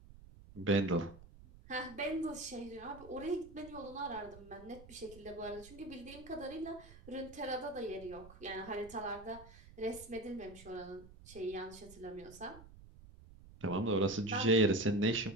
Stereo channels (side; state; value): right; noise; rumble, 19 dB below the sound